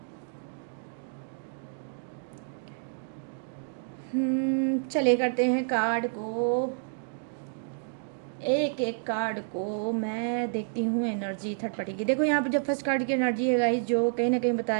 चलिए करते हैं कार्ड को, एक एक कार्ड को मैं देखती हूँ एनर्जी थर्ड पार्टी की। देखो यहाँ पर जो फर्स्ट कार्ड की एनर्जी है गाइस, जो कहीं ना कहीं बता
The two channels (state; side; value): silent; left; digital silence